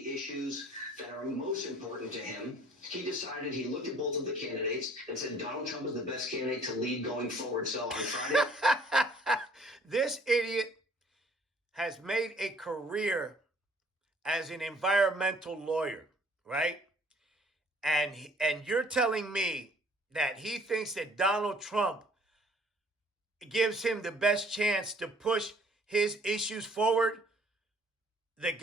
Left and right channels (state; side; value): normal; both; correlation 0.58